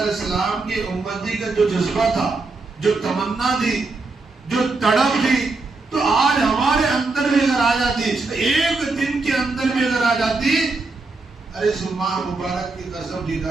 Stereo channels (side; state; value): left; quieter; 3.7 dB